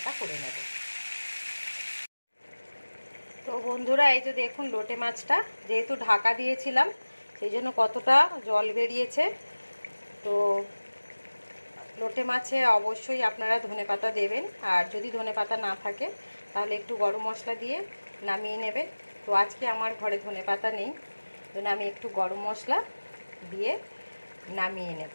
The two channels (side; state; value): both; inverted; correlation -1.00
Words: করে নেব। তো বন্ধুরা এই যে দেখুন লোটে মাছটা যেহেতু ঢাকা দিয়েছিলাম সেই জন্য কতটা জল বেরিয়েছে। তো লোটে মাছে অবশ্যই আপনারা ধনেপাতা দেবেন, আর যদি ধনেপাতা না থাকে তাহলে একটু গরম মশলা দিয়ে নামিয়ে নেবেন। তো আজকে আমার ঘরে ধনেপাতা নেই, জন্য আমি একটু গরম মশলা দিয়ে নামিয়ে নেব।